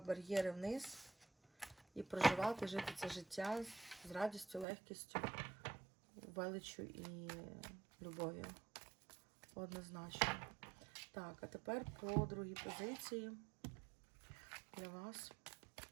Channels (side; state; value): left; drops out; at 4.7 s